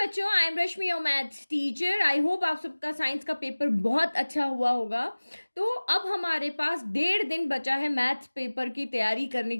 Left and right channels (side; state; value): both; inverted; correlation -1.00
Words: बच्चों, I am Rashmi your maths teacher. I hope आप सबका साइंस का पेपर बहुत अच्छा हुआ होगा। तो अब हमारे पास 1.5 दिन बचा है मैथ्स पेपर की तैयारी करने